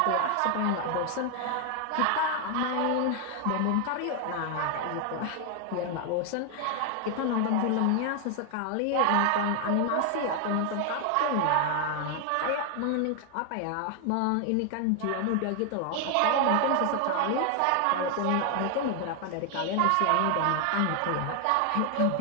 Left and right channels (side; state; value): both; different; correlation 0.00